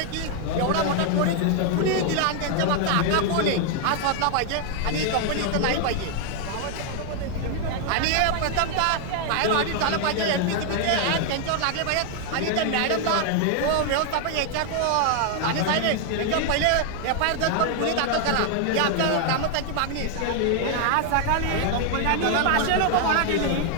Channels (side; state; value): both; different; correlation 0.00